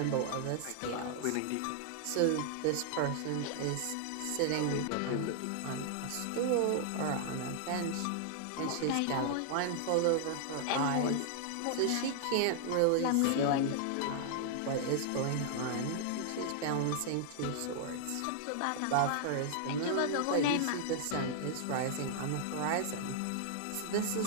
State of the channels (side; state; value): both; different; correlation -0.01